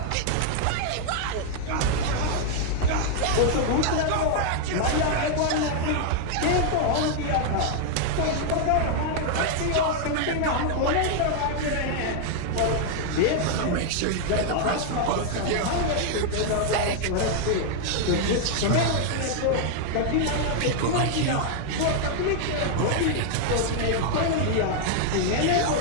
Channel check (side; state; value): both; different; correlation 0.00